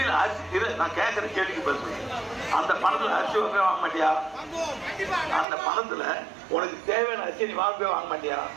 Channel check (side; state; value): left; drops out; at 5.5 s